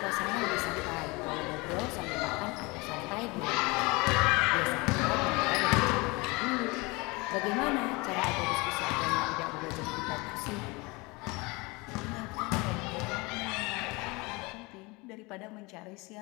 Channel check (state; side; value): quieter; right; 25.4 dB